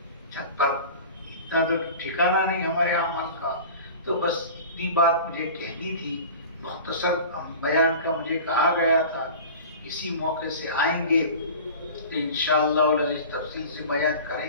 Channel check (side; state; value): both; inverted; correlation -0.37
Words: چھت پر، اتنا تو ٹھکانہ نہیں ہمارے اعمال کا۔ تو بس اتنی بات مجھے کہنی تھی، مختصر بیان کا مجھے کہا گیا تھا، اسی موقع سے آئیں گے تو انشاءاللہ العزیز تفصیل سے بیان